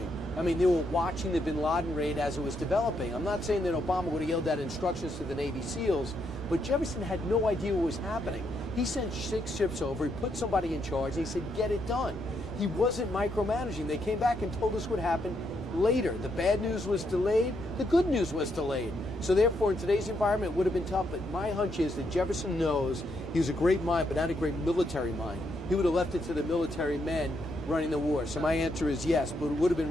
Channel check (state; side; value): normal; both; correlation 0.77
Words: I mean, they were watching the bin Laden raid as it was developing. I'm not saying that Obama would have yelled out instructions to the Navy SEALs, but Jefferson had no idea what was happening. He sent 6 ships over, he put somebody in charge, and he said, get it done. He wasn't micromanaging. They came back and told us what happened later. The bad news was delayed, the good news was delayed. So therefore, in today's environment, it would have been tough, but my hunch is that Jefferson knows he was a great mind, but not a great military mind. He would have left it to the military men running the war. So my answer is yes, but it would have